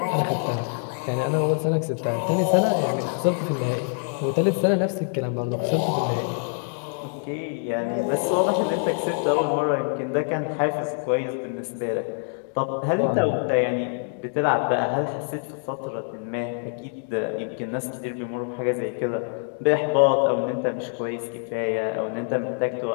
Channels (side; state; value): right; silent; 56 dB below the other